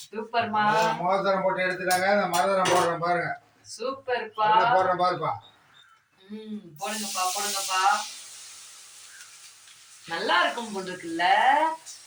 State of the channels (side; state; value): both; identical; correlation 1.00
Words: சூப்பர்மா. மோதிரம் போட்டு எடுத்துட்டாங்க. அந்த மரதரம் போடுறேன் பாருங்க. சூப்பர்ப்பா. போடுறேன் பாருப்பா. போடுங்கப்பா போடுங்கப்பா. நல்லா இருக்கும் போல் இருக்குல்ல.